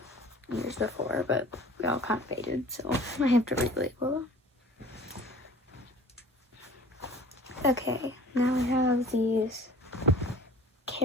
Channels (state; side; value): normal; both; correlation 0.46